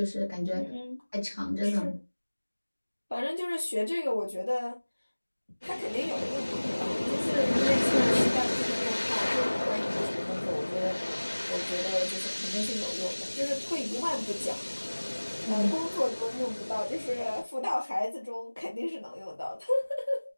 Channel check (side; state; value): both; inverted; correlation -1.00